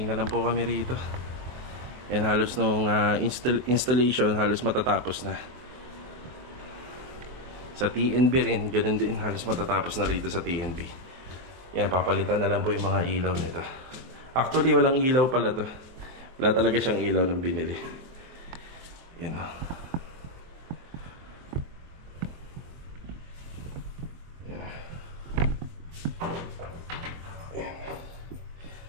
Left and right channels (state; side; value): late; left; 23 ms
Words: na lang po kami rito. Yan, halos nung installation, halos matatapos na. Sa TNB rin, ganun din, halos matatapos na rito sa TNB. Yan, papalitan na lang po yung mga ilaw nito. Actually, walang ilaw pala to. Wala talaga siyang ilaw ng binili. Yan o.